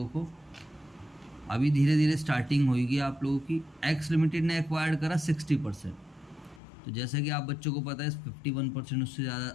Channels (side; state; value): right; drops out; at 6.6 s